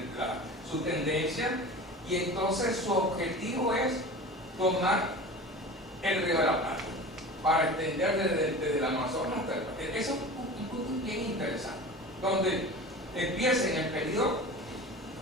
su tendencia, y entonces su objetivo es tomar el Río de la Plata para extender desde el Amazonas hasta el Pacífico. Eso es un punto bien interesante, donde empieza en el periodo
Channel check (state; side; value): normal; both; correlation 0.35